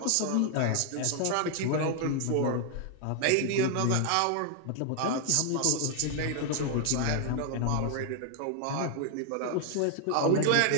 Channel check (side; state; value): both; different; correlation 0.00